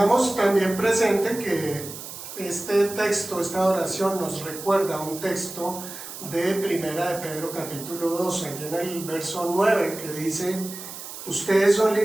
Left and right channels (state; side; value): noise; right; hiss, 11 dB below the sound